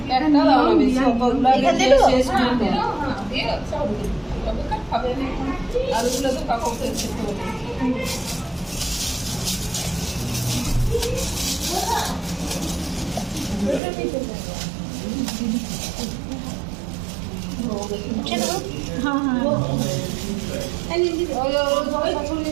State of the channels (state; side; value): drops out; left; at 13.8 s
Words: একটা দাও না বেশি কতগুলো এখানে শেষ করে দাও হ্যাঁ দিয়ে সব তবে খাবে না আর ওগুলো তো কাককে খেতে হবে